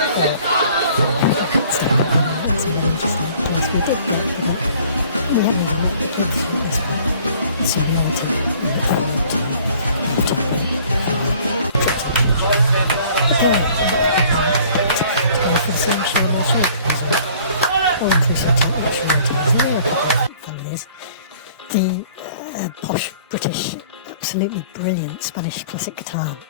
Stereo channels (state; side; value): inverted; both; correlation -0.54